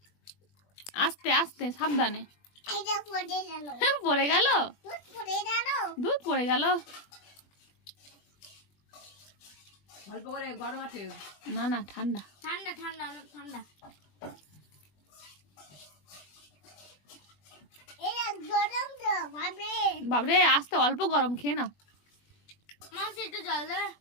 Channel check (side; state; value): right; late; 21 ms